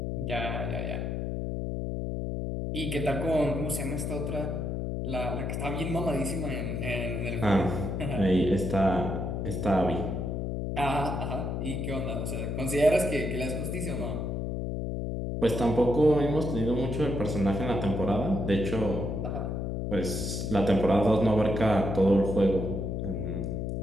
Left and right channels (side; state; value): left; noise; hum, 2 dB below the sound